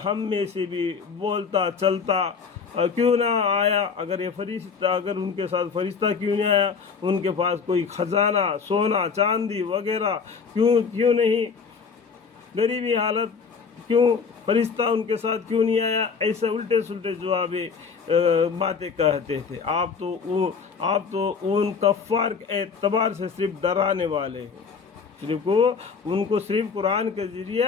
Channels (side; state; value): right; quieter; 5.7 dB